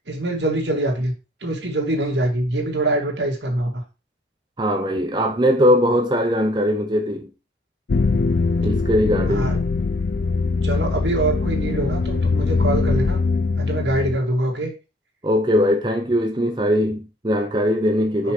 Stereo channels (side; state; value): both; normal; correlation 0.60